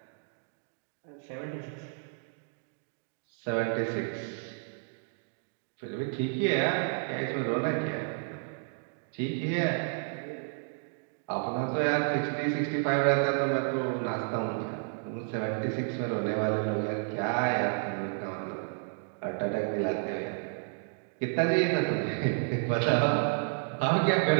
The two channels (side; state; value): left; silent; 57 dB below the other